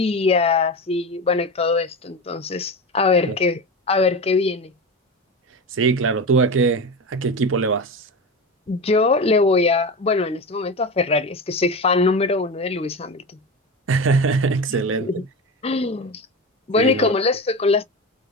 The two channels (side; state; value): both; normal; correlation 0.24